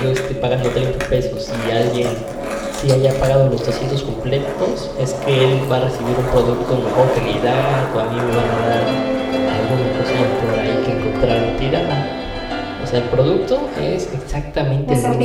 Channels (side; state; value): both; identical; correlation 1.00